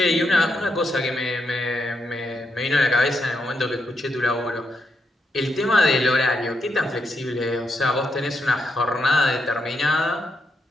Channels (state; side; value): normal; both; correlation 0.81